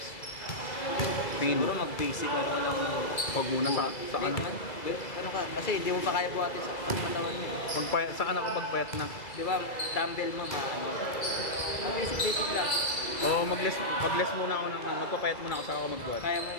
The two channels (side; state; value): right; late; 2.2 ms